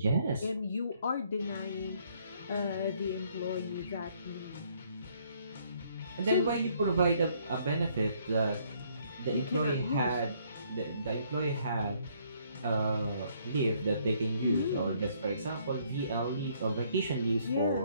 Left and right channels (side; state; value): both; inverted; correlation -0.66